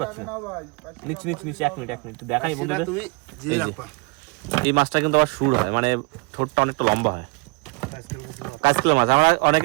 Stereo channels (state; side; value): quieter; left; 28.9 dB